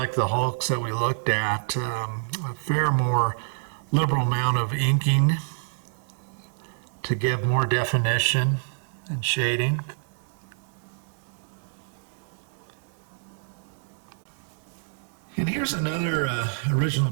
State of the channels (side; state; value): left; silent; digital silence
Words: the Hulks that we looked at, a fair more liberal amount of inking to give more definition and shading. And here's another original